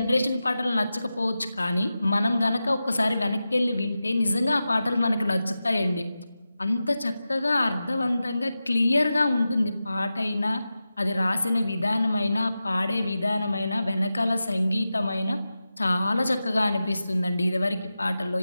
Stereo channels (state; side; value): inverted; both; correlation -0.93